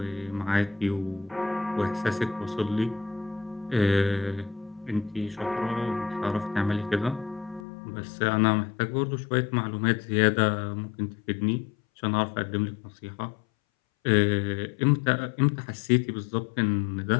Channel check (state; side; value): drops out; right; at 7.6 s